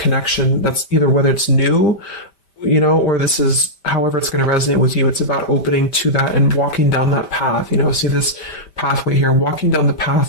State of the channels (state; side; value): late; right; 5.1 ms